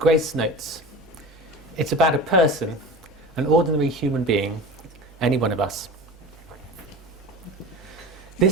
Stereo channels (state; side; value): normal; both; correlation 0.34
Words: Notes. It's about a person, an ordinary human being, any one of us.